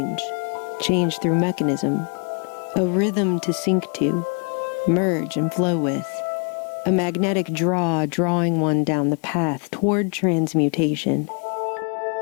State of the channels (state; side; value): quieter; right; 38.4 dB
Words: through mechanism, a rhythm to sync to, merge and flow with, a magnetic draw drawing one down the path toward transmutation.